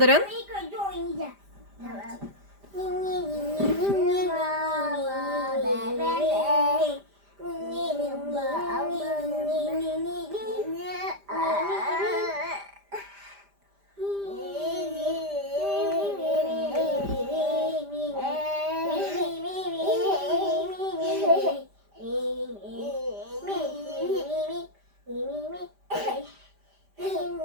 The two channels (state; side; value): late; left; 5.0 ms